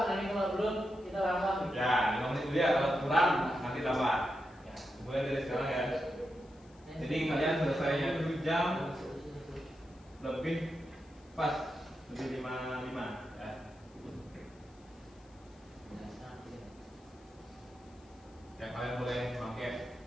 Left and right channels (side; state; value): left; noise; hiss, 30 dB below the sound